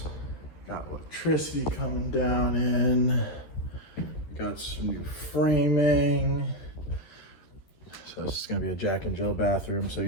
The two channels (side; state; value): right; late; 11 ms